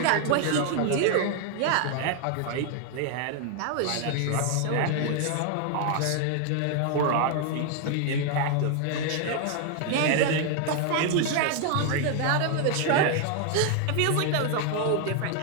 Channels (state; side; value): different; both; correlation 0.00